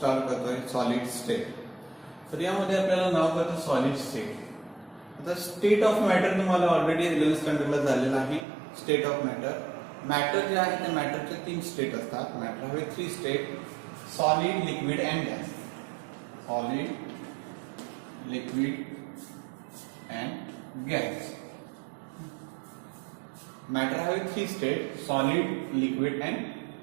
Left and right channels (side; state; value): left; drops out; at 8.5 s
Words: करतोय सॉलिड स्टेट. तर यामध्ये आपल्याला नाव करतो सॉलिड स्टेट. आता स्टेट ऑफ मॅटर तुम्हाला ऑलरेडी 11th स्टँडर्डला झालेला आहे. स्टेट ऑफ मॅटर जे आहे त्या मॅटरचे 3 स्टेट असतात. मॅटर हवे 3 state: solid, liquid and gas. Solid, liquid and gas. Matter हवे 3 state: solid, liquid and